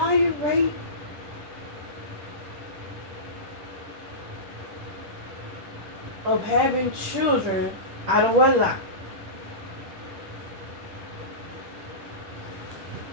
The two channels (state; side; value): late; left; 10 ms